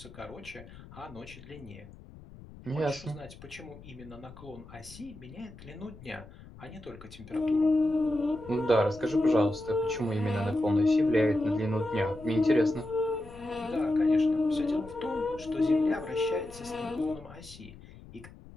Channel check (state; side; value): noise; left; rumble, 18 dB below the sound